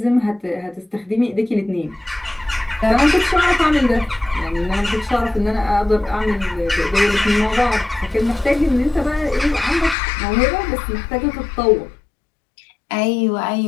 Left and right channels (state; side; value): drops out; right; at 10.0 s